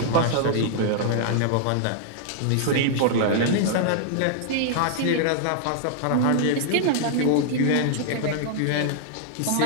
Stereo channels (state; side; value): different; both; correlation -0.01